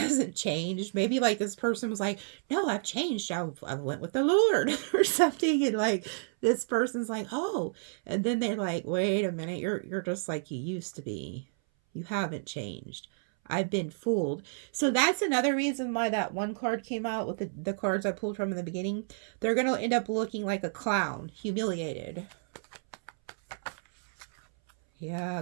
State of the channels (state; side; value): silent; left; 58 dB below the other